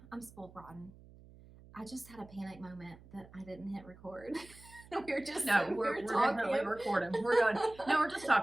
I'm spoiled rotten. I just had a panic moment that I didn't hit record. We're definitely recording. We're just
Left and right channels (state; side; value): noise; right; hum, 22 dB below the sound